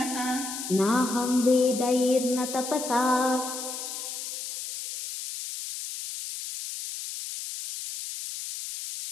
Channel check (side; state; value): left; noise; hiss, 7 dB below the sound